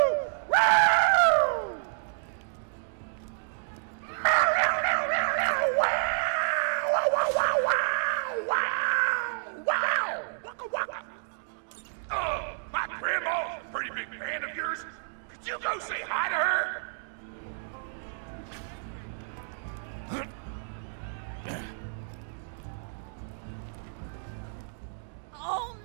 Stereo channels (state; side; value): silent; left; digital silence